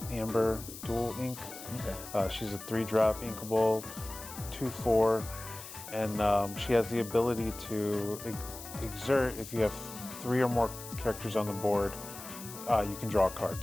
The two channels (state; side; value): noise; left; hiss, 13 dB below the sound